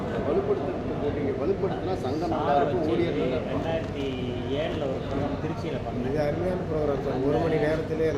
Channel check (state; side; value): identical; both; correlation 1.00